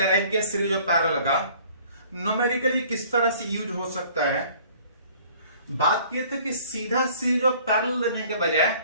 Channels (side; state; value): both; inverted; correlation -0.53